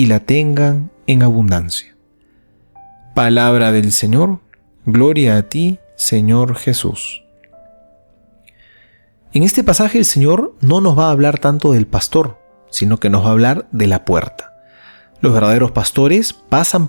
la tengan en abundancia. Palabra del Señor. Gloria a ti, Señor Jesús. En este pasaje el Señor no nos va a hablar tanto del pastor, sino que nos va a hablar de la puerta. Los verdaderos pastores pasan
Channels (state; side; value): inverted; both; correlation -1.00